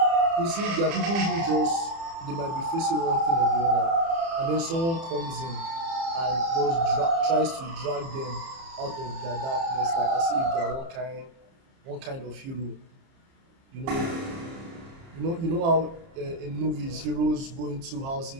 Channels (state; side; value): late; left; 30 ms